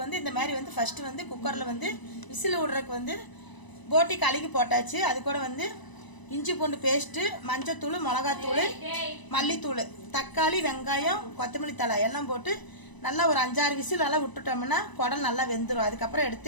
வந்து இந்த மாதிரி வந்து ஃபஸ்ட்டு வந்து குக்கரில் வந்து விசில் விடுறதுக்கு வந்து போட்டி கழுகி போட்டாச்சு. அது கூட வந்து இஞ்சி பூண்டு பேஸ்ட்டு, மஞ்சத்தூள், மிளகாத்தூள், மல்லித்தூள், தக்காளி, வெங்காயம், கொத்தமல்லி தழை எல்லாம் போட்டு நல்லா ஒரு 5-6 விசில் நல்லா விட்டுட்டோம்னா குடல் நல்லா வெந்துடும். அதுக்கப்புறம்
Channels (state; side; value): late; right; 1.0 ms